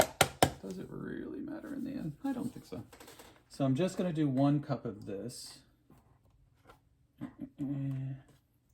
Does it really matter in the end? I don't think so. So I'm just gonna do 1 cup of this. If I can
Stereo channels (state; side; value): identical; both; correlation 1.00